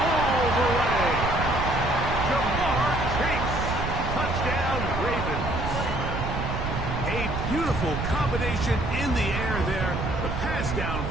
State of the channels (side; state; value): right; noise; rumble, 3 dB below the sound